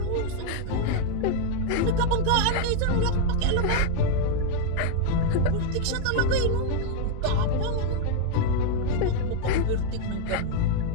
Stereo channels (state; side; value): different; both; correlation 0.00